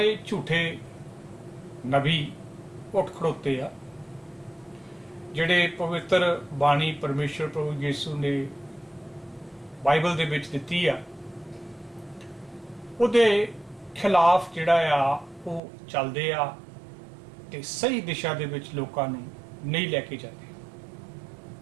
ਝੂਠੇ ਨਬੀ ਉੱਠ ਖੜੋਤੇ ਆ ਜਿਹੜੇ ਪਵਿੱਤਰ ਬਾਣੀ ਪਰਮੇਸ਼ਰ ਪ੍ਰਭੂ ਯਿਸੂ ਨੇ ਬਾਈਬਲ ਦੇ ਵਿੱਚ ਦਿੱਤੀ ਆ ਉਹਦੇ ਖਿਲਾਫ ਜਿਹੜਾ ਆ ਉਹ ਚੱਲਦੇ ਆ ਤੇ ਸਹੀ ਦਿਸ਼ਾ ਦੇ ਵਿੱਚ ਲੋਕਾਂ ਨੂੰ ਨਹੀਂ ਲੈ ਕੇ ਜਾਂਦੇ।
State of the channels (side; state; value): left; drops out; at 15.6 s